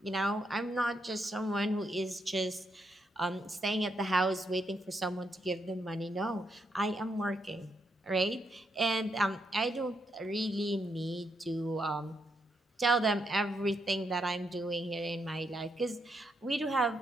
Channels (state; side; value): normal; both; correlation 0.79